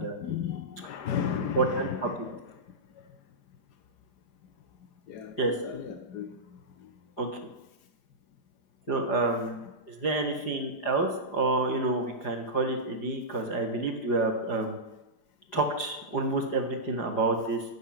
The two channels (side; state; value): right; late; 4.9 ms